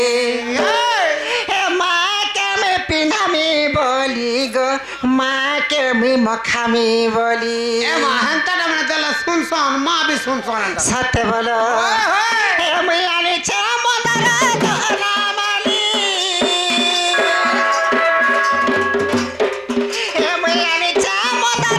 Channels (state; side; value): identical; both; correlation 1.00